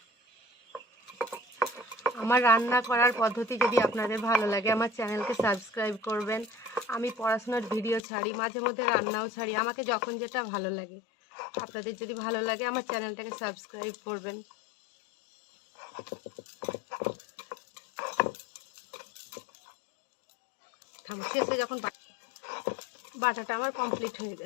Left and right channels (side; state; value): right; drops out; at 8.0 s